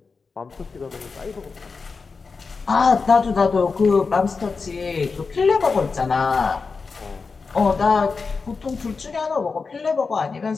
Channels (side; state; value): right; quieter; 4.7 dB